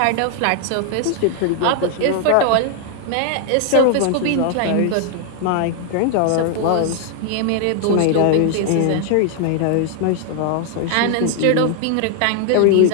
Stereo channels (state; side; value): different; both; correlation 0.00